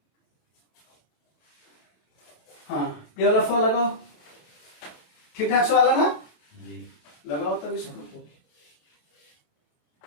हाँ ये वाला फल लगाओ, ठीक ठाक सवाल है ना, जी लगाओ तब इसको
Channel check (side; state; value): right; late; 27 ms